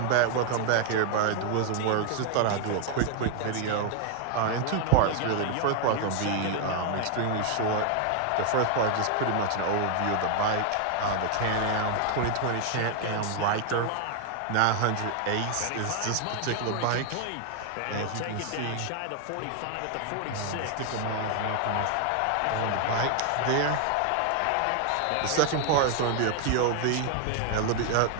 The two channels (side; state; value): both; different; correlation 0.00